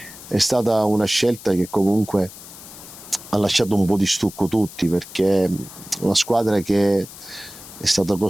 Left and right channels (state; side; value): noise; left; hiss, 16 dB below the sound